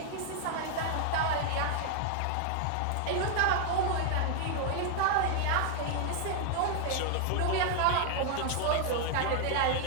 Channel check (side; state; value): both; different; correlation 0.00